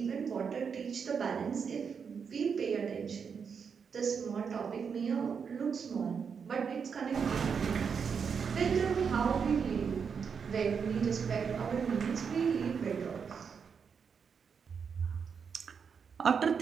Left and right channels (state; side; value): quieter; left; 6.4 dB